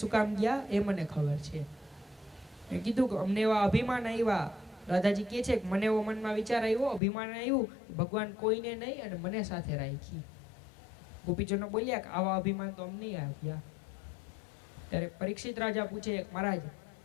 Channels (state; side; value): drops out; right; at 7.0 s